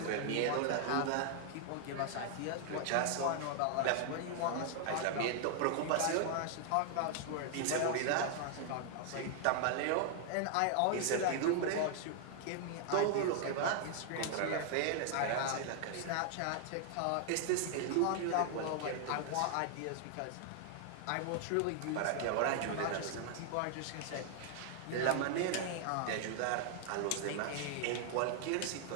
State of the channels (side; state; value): both; different; correlation 0.00